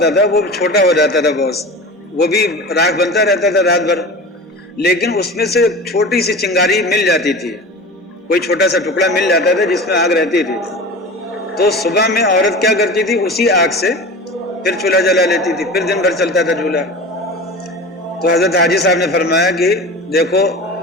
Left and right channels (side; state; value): both; normal; correlation 0.33